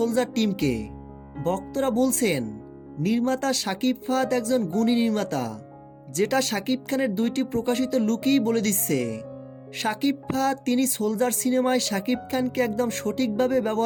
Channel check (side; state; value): both; identical; correlation 1.00